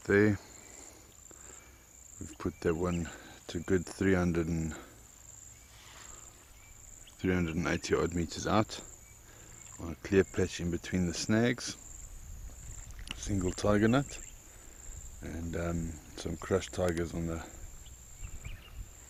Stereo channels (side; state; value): both; identical; correlation 1.00